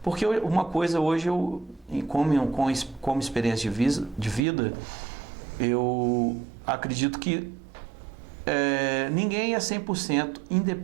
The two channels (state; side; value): drops out; left; at 4.4 s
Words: Porque uma coisa hoje, como experiência de vida, eu acredito que ninguém é 100%